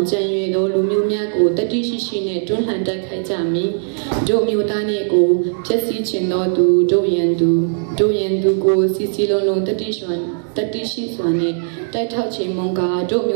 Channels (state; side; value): silent; left; digital silence